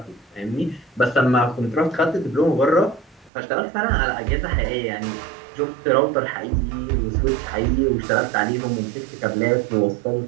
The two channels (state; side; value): drops out; left; at 3.3 s